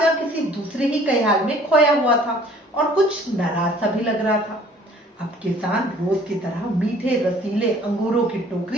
किसी दूसरे ही ख्याल में खोया हुआ था और कुछ नाराज सा भी लग रहा था। अब किसान रोज की तरह मीठे रसीले अंगूरों की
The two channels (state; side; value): normal; both; correlation 0.54